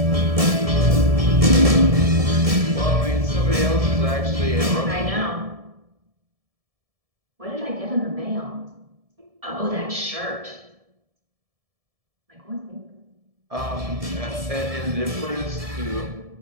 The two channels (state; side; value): late; left; 1.7 ms